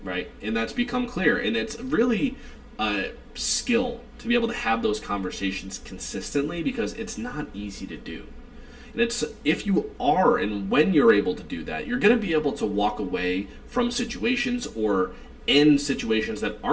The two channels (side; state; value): both; identical; correlation 1.00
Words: right? And that's become clear. And it's really a skill to be able to have those conversations consistently because it's not easy to do. And it's if you are and when you're able to do that, you're going to be able to walk away from situations or end situations that